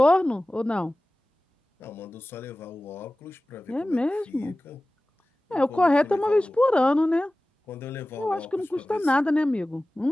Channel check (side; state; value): both; normal; correlation 0.97